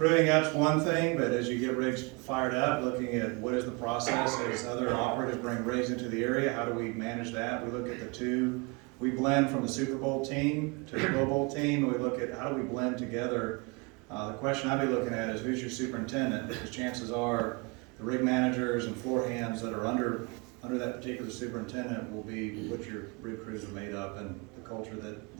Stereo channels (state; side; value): quieter; left; 29.4 dB